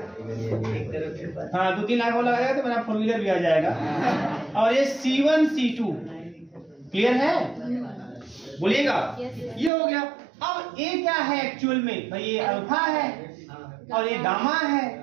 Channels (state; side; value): drops out; left; at 9.7 s